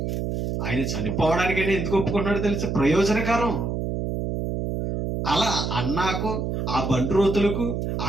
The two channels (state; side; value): noise; right; hum, 2 dB below the sound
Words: ఆయన చనిపోవడానికైనా ఎందుకు ఒప్పుకున్నాడో తెలిసి ప్రయోజనకరం. అలా అన్నాకు, ఆ బంట్రోతులకు,